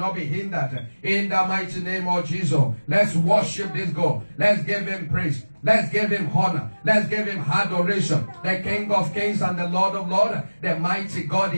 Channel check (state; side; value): inverted; both; correlation -1.00